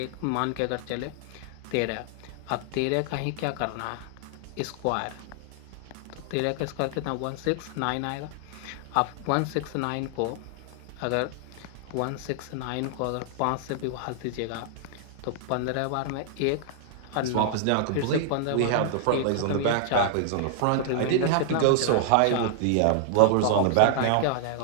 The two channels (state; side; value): different; both; correlation -0.01